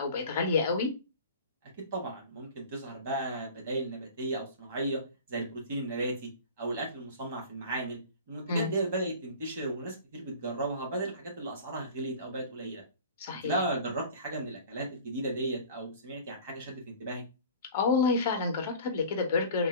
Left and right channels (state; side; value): inverted; both; correlation -0.41